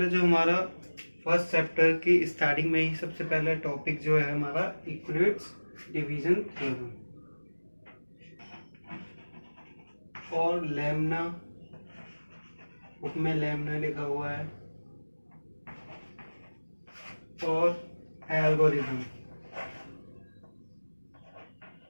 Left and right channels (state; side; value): inverted; both; correlation -1.00